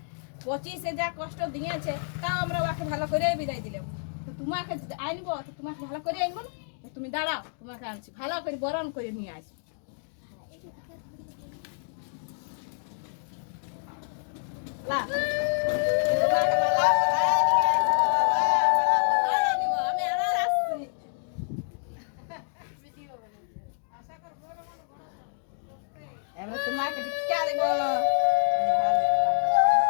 যা কষ্ট দিয়েছে, তাও আমরা ওকে ভালো করে বিদায় দিলাম। তো তোমাকে আনবো, তো তোমাকে ভালো করে আনবো না? তো তুমি দাঁড়াও, তোমাকে আনছি, ভালো করে বরণ করে নিয়ে আসি। লা তোমাকে ভালো করে নিয়ে আসবো বাবা, ভালো করে নিব। আমি আর আসছি। এবার তোমাকে টিকা দেব। আরে ভালো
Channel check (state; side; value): silent; right; digital silence